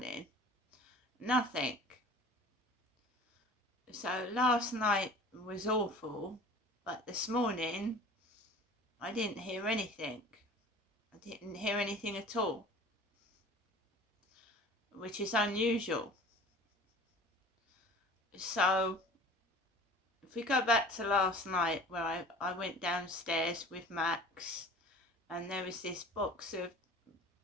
Nothing. So last night was awful, but this morning I didn't hear anything. I didn't hear anything at all, which is unusual. So if we go back to last night, where I went downstairs with Max and there was this box of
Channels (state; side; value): normal; both; correlation 0.43